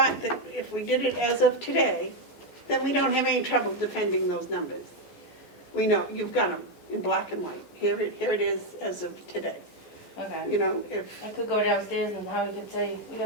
that if we did it as of today, then we don't have any trouble defending those numbers. We know, you've got them in black and white. Here it is as of today. okay. You know, if, I could go downstairs and Howie could say we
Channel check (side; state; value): right; late; 14 ms